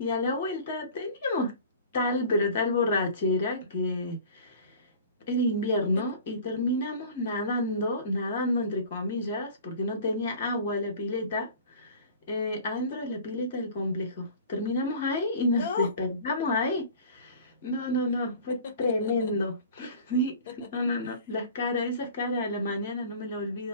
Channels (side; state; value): both; inverted; correlation -0.43